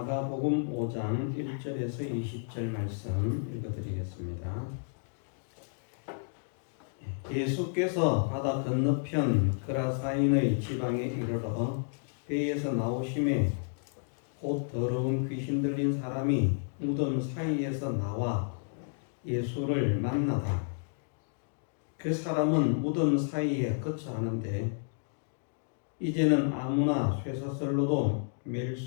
1절에서 20절 말씀 읽어드리겠습니다. 예수께서 바다 건너편 그라사인의 지방에 이르러 배에서 나오심에 곧 더러운 귀신 들린 사람이 무덤 사이에서 나와 예수를 만나다. 그 사람은 무덤 사이에 거처하는데 이제는 아무나 쇠사슬로도 맬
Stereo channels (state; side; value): silent; right; digital silence